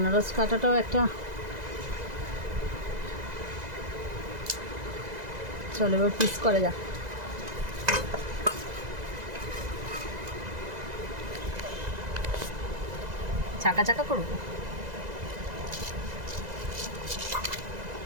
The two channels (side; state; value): left; late; 2.0 ms